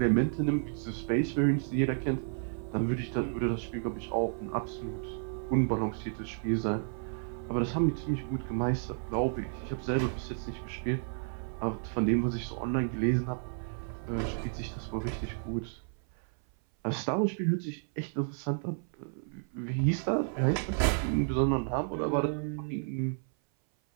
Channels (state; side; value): silent; left; 56 dB below the other